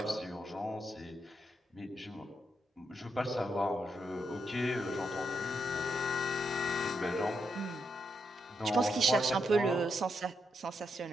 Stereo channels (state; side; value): normal; both; correlation 0.81